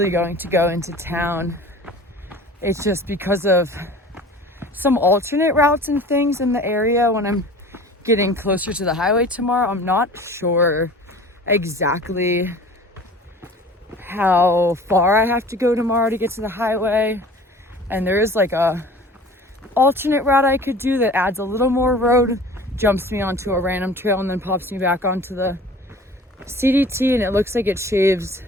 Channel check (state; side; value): normal; both; correlation 0.43